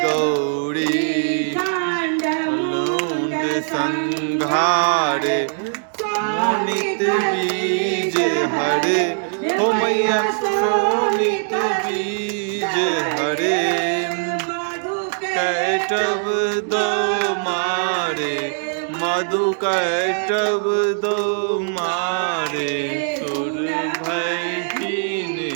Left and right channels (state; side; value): silent; left; digital silence